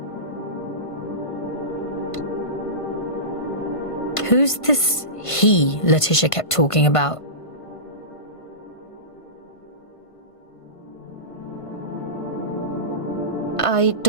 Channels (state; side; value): late; right; 1.5 ms